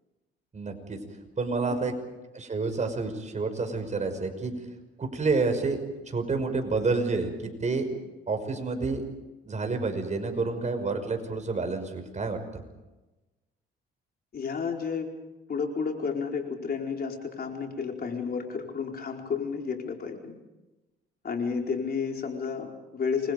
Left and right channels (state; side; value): normal; both; correlation 0.49